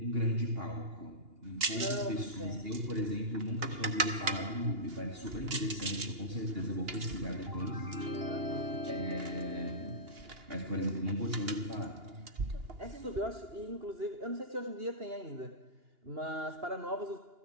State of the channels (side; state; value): left; late; 2.8 ms